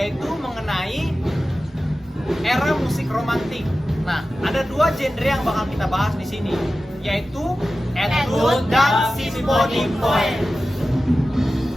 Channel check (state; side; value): normal; both; correlation 0.94